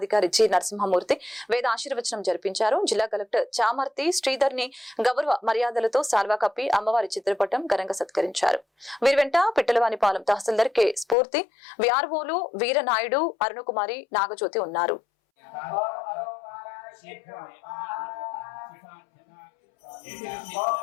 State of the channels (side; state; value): right; drops out; at 11.2 s